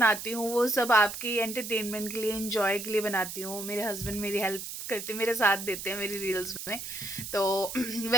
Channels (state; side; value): noise; right; hiss, 8 dB below the sound